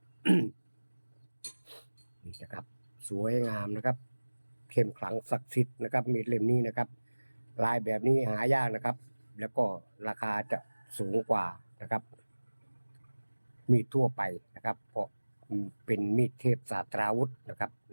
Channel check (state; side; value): inverted; both; correlation -1.00